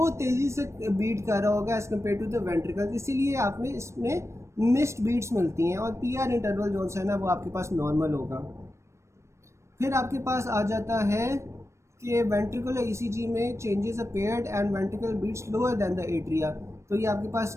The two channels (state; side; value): late; left; 0.13 ms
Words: तेज़ी से बीट कर रहा होगा as compare to the ventricle, इसीलिए आपने इसमें मिस्ड बीट्स मिलती हैं। और पीआर इंटरवल जो है ना, वो आपके पास नॉर्मल होगा। फिर आपके पास आ जाता है कि वेंट्रिकुलर ईसीजी में changes appeared and ventricle beats lower than the atria. तो ये आपके पास